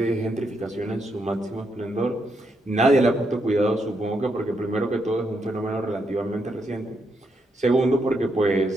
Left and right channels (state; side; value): normal; both; correlation 0.80